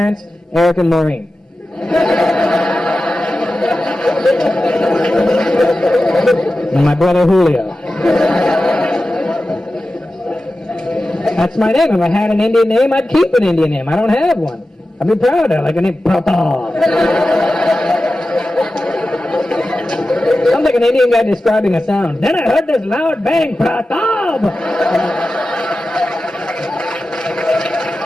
Eric and Maureen. And my brother Julio. That's my name. If I had an Indian name, I'd keep an Indian name. I don't have one. I'd be proud of it, like a name, Pratap. Sounds like an Indian guy describing a sound. Then I heard this loud bang, Pratap!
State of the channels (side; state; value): both; normal; correlation 0.93